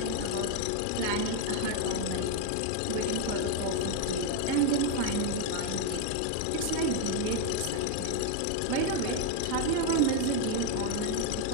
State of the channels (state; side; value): different; both; correlation 0.01